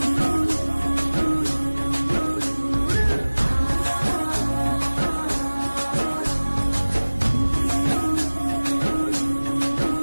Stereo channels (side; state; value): both; inverted; correlation -1.00